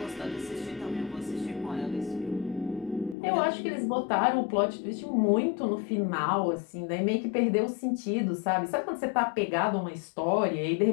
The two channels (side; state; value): right; drops out; at 3.2 s